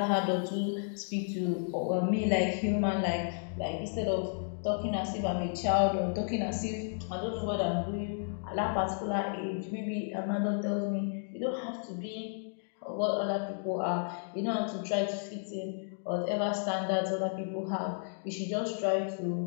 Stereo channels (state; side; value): silent; right; digital silence